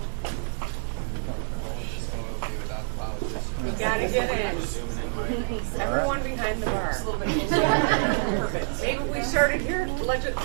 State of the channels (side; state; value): left; silent; 60 dB below the other